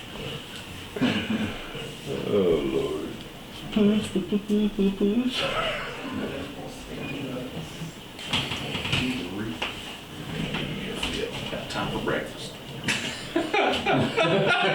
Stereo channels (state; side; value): identical; both; correlation 1.00